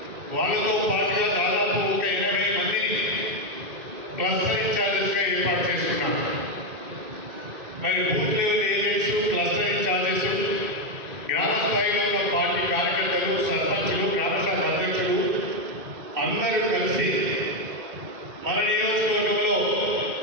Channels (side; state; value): left; late; 2.6 ms